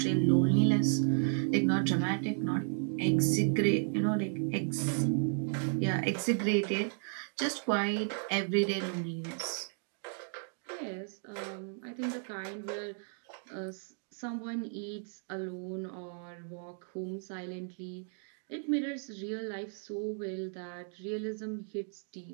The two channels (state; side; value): silent; left; 55 dB below the other